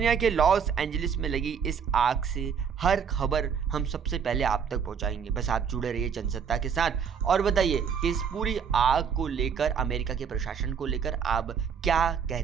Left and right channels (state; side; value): quieter; left; 7.0 dB